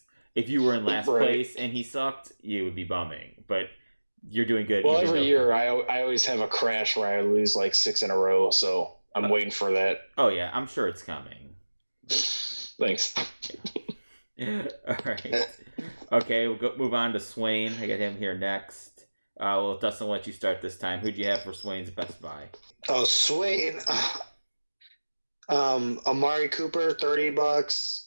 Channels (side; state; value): both; inverted; correlation -1.00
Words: if you were in last place and he sucked, you would be bumming. But you're doing good. Well, every year I always have a crash where I lose like 6 in a row. So I'm waiting for that. Oh, yeah, I'm sure it's coming. Thanks. All right. Okay, we'll move on to Swain. I got him here next. Dustin, I'll let you start this time. Who'd you have for Swain's best buy? Oh, Swain. Amari Cooper,